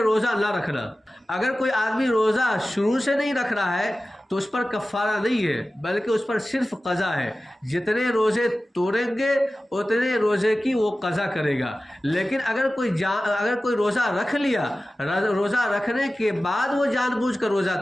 نہ رکھنا۔ اگر کوئی آدمی روزہ شروع سے نہیں رکھ رہا ہے تو اس پر کفارہ نہیں ہے، بلکہ اس پر صرف قضا ہے۔ جتنے روزے توڑیں گے اتنے روزے کی وہ قضا کرے گا۔ لیکن اگر کوئی روزہ رکھ لیا، روزہ رکھنے کے بعد وہ جان بوجھ کر روزہ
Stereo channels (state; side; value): normal; both; correlation 0.96